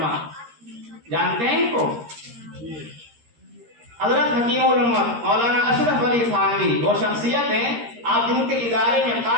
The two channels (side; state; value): left; late; 13 ms